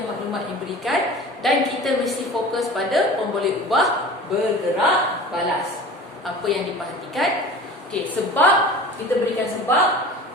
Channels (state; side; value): normal; both; correlation 0.39